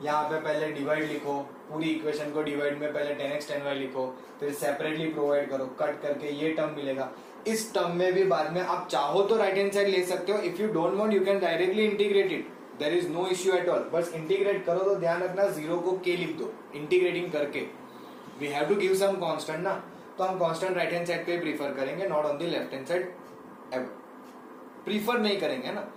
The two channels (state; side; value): identical; both; correlation 1.00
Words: यहाँ पे पहले divide लिखो, पूरी equation को divide में पहले 10x 10y लिखो, फिर सेपरेटली प्रोवाइड करो, कट करके ये टर्म मिलेगा। इस टर्म में भी बाद में आप चाहो तो राइट हैंड साइड ले सकते हो, if you don't want you can directly integrate it, there is no issue at all. बस इंटीग्रेट करो तो ध्यान रखना जीरो को के लिख दो इंटीग्रेटिंग करके, we have to give some constant ना, तो हम कांस्टेंट राइट हैंड साइड पे प्रीफर करेंगे, not on the left hand side ever, prefer नहीं करेंगे ना,